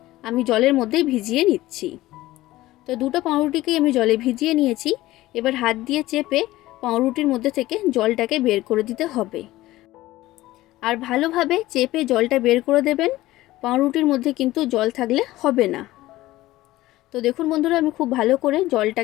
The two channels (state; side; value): quieter; right; 16.9 dB